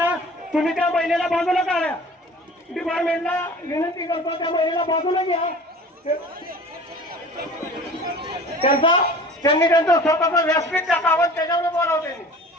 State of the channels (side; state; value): both; normal; correlation 0.42